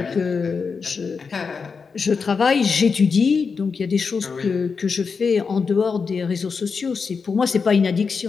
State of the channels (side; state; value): right; quieter; 5.3 dB